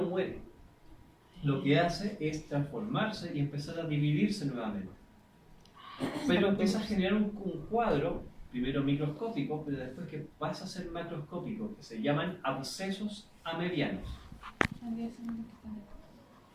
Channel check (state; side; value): identical; both; correlation 1.00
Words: muere. Lo que hace es transformarse y empezar a dividirse nuevamente. Pero empieza a generar un cuadro, primero microscópico, pero después que pasa a ser macroscópico, que se llaman abscesos amebianos.